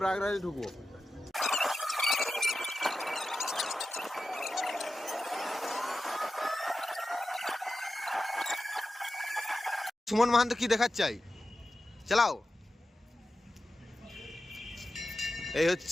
ঢুকবো। সুমন মাহান্ত কি দেখাচ্ছে চাই, চালাও। এই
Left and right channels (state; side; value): normal; both; correlation 0.92